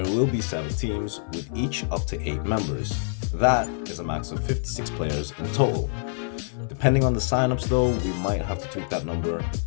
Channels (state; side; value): silent; right; 61 dB below the other